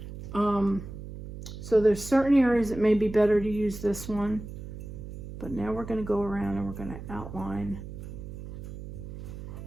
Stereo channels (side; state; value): right; noise; hum, 11 dB below the sound